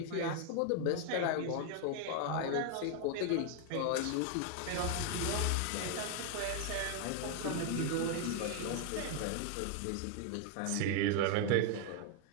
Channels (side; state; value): both; different; correlation 0.00